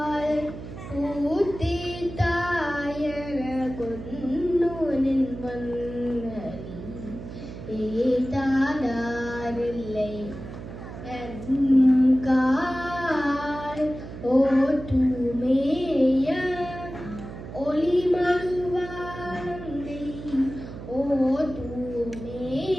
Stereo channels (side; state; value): right; noise; hum, 11 dB below the sound